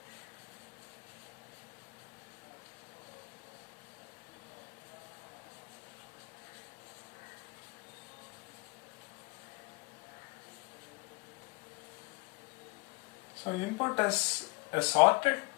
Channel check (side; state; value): right; quieter; 30.0 dB